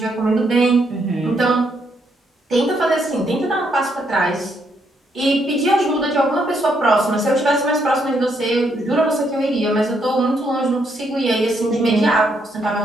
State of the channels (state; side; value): normal; both; correlation 0.75